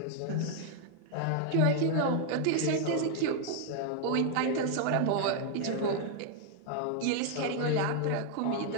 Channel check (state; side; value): different; both; correlation 0.00